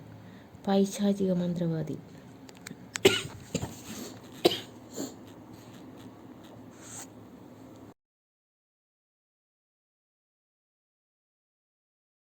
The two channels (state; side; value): identical; both; correlation 1.00